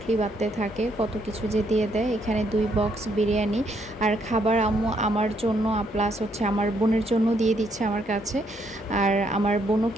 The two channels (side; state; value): both; normal; correlation 0.73